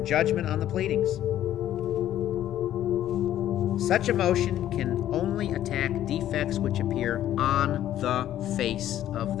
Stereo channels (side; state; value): right; quieter; 12.1 dB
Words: judgment on the pleadings. Such a motion can only attack defects which appear on the face of